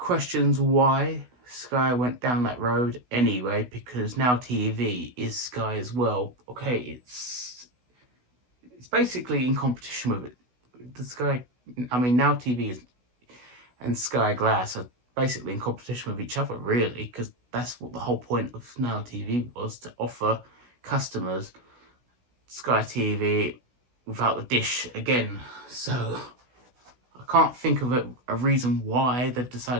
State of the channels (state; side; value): late; left; 16 ms